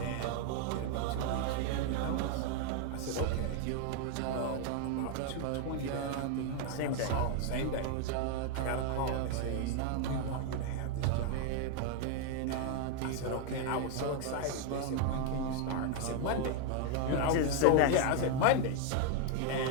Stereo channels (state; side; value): different; both; correlation 0.00